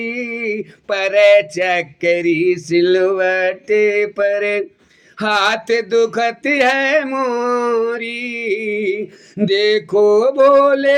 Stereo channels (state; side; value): identical; both; correlation 1.00